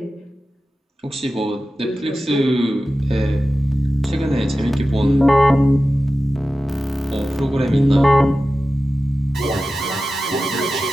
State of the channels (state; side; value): normal; both; correlation 0.94